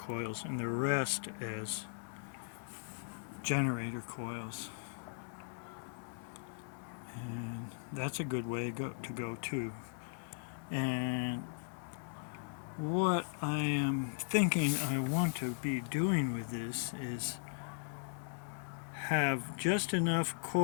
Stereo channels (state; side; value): silent; right; digital silence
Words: and the rest as generator coils. And that's a good way to go too. And what I am thinking I want to be doing with this is have just enough